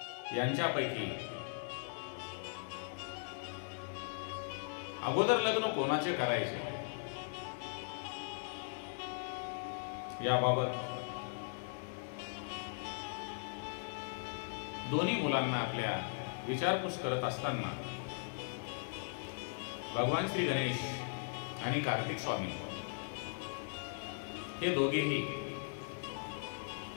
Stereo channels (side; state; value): right; silent; digital silence